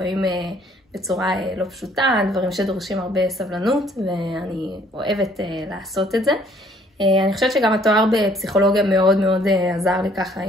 בצורה לא פשוטה, דברים שדורשים הרבה סבלנות, ואני אוהבת לעשות את זה. אני חושבת שגם התואר בפסיכולוגיה מאוד מאוד עזר לי ככה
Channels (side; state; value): both; normal; correlation 0.61